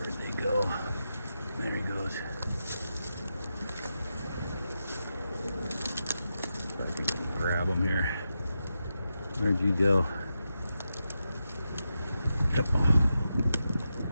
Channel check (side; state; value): both; inverted; correlation -0.88